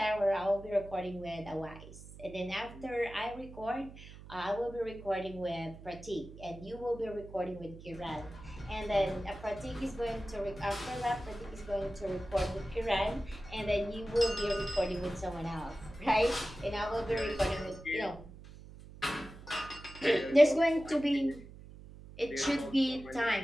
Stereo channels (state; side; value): noise; right; hum, 16 dB below the sound